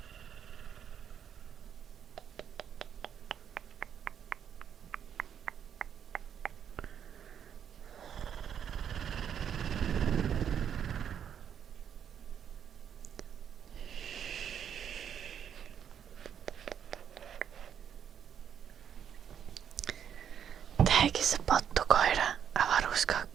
Teki se pottukoira,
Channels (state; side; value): quieter; left; 8.6 dB